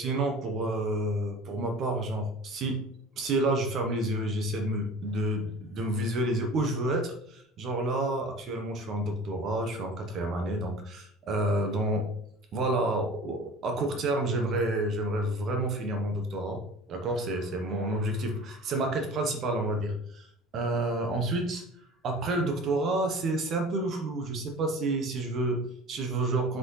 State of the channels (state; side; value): normal; both; correlation 0.40